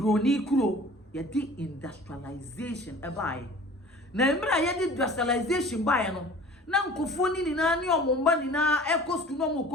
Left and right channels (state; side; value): normal; both; correlation 0.45